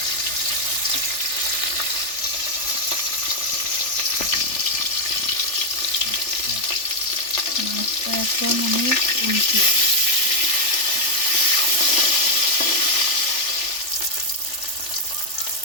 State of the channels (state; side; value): late; right; 3.4 ms